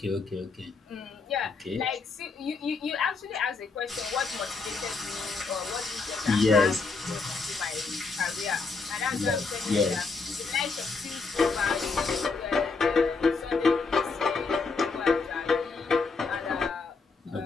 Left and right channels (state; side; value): quieter; right; 4.4 dB